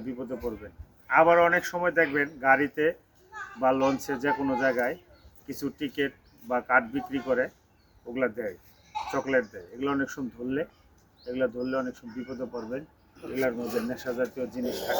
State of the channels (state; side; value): identical; both; correlation 1.00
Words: বিপদে পড়বেন। আবার অনেক সময় দেখবেন গাড়িতে বা লঞ্চে যে কোনো জায়গায় কিছু টিকিট বা কার্ড বিক্রি করে, ওগুলা দেয়, চকলেট দেয়। এগুলো অনেক সময় ধরলে অনেক সময় বিপদে পড়বেন। এগুলোর মধ্যে নেশা জাতীয় জিনিস